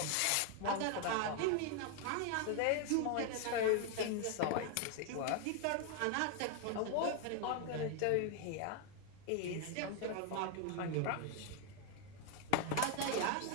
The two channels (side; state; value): both; different; correlation 0.00